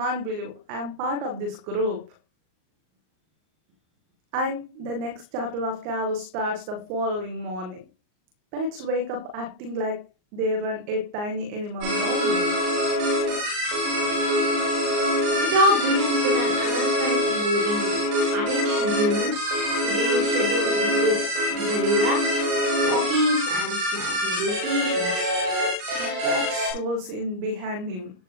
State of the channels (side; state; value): left; late; 38 ms